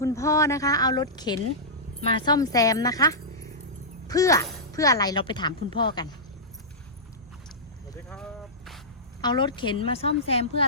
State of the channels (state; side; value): normal; both; correlation -0.14